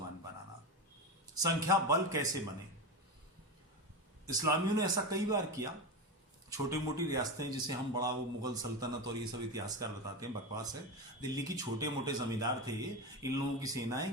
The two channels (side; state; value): both; normal; correlation 0.19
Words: बनाना। संख्या बल कैसे बने? इस्लामियों ने ऐसा कई बार किया। छोटी मोटी रियासतें, जिसे हम बड़ा वो मुगल सल्तनत और ये सब इतिहासकार बताते हैं, बकवास है। दिल्ली की छोटे मोटे जमींदार थे, इन लोगों की सेनाएं